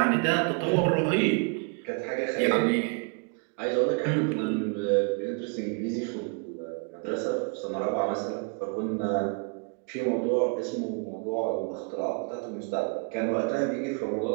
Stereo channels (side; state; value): left; quieter; 35.4 dB